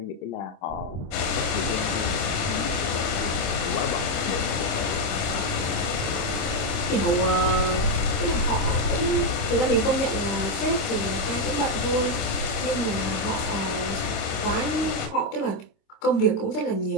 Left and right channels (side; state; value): right; late; 26 ms